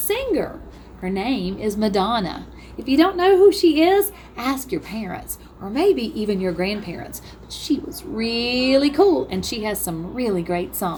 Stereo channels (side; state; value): both; identical; correlation 1.00